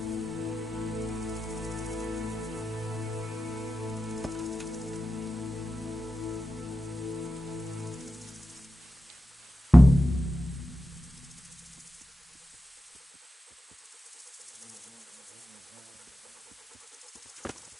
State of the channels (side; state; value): both; normal; correlation 0.92